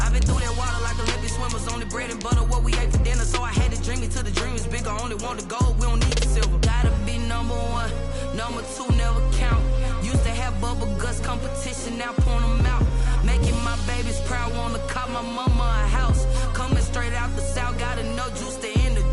I've been through that water like Olympic swimmers. Only bread and butter what we ate for dinner. So I had to dream it till the dream is bigger. Only want the gold, we don't need the silver. Gotta be number 1, number 2 never count. Used to have bubble guts competition, now point them out. Making my babies proud, wanna call my mama a house. Coming straight out the south, got enough juice to end the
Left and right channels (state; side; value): identical; both; correlation 1.00